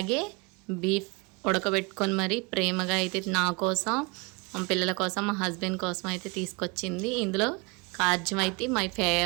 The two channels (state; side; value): quieter; left; 28.5 dB